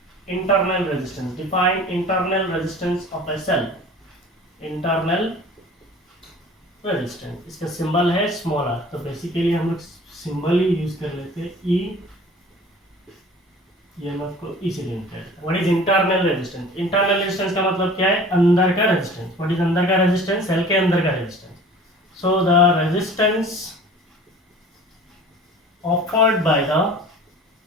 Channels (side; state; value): both; normal; correlation 0.44